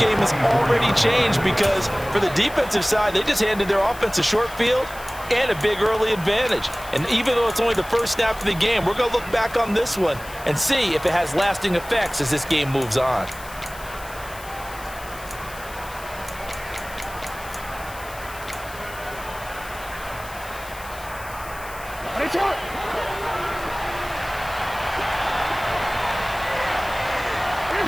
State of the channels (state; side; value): noise; left; hiss, 17 dB below the sound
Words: game has already changed because for the defensive side, they just handed their offense a short field and a big early advantage. And even though it's only the first snap of the game, we're going to look back on this one and see if it has lasting effects as this game moves on.